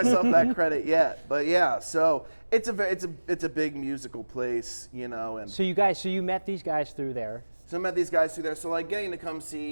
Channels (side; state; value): both; inverted; correlation -1.00